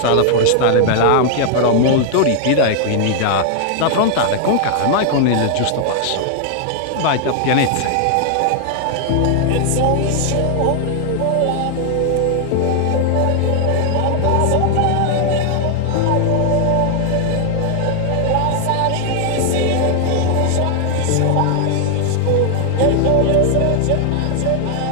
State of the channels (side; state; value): both; different; correlation 0.00